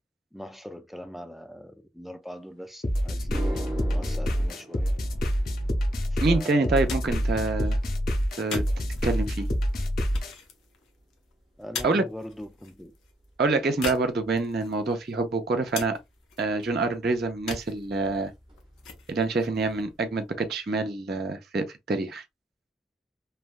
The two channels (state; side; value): normal; both; correlation 0.71